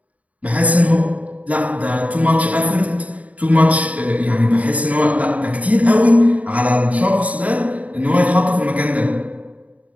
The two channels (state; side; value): late; left; 0.069 ms